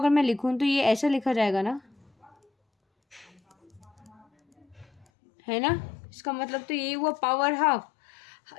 मैं लिखूं तो ये ऐसा लिखा जाएगा ना, है ना, इसका मतलब तो यही हुआ पावर हाफ।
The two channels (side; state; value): right; drops out; at 5.1 s